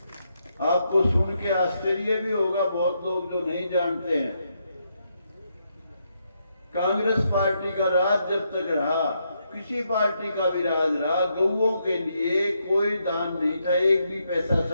आपको सुन के आश्चर्य भी होगा, बहुत लोग जो नहीं जानते हैं, कांग्रेस पार्टी का राज जब तक रहा, किसी पार्टी का भी राज रहा, गौओं के लिए कोई दान नहीं था, एक भी पैसा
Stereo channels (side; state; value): both; inverted; correlation -0.79